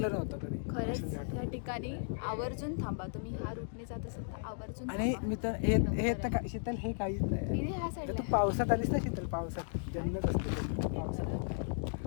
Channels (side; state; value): right; silent; digital silence